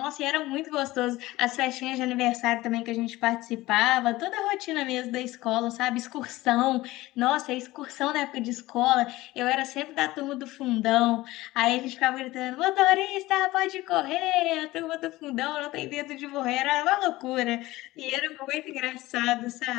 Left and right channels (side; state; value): right; quieter; 18.3 dB